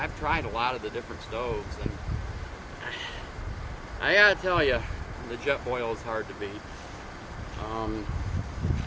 tried a lot of the different stoves, and I gotta tell you, the Jetboil is hard to beat.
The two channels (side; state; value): both; identical; correlation 1.00